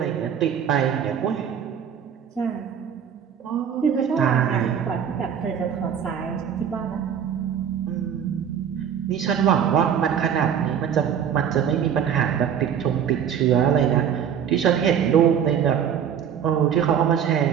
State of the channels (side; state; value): left; quieter; 8.4 dB